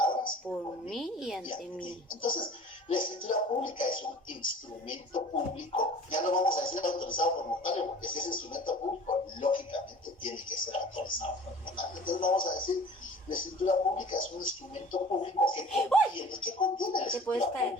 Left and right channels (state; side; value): normal; both; correlation 0.44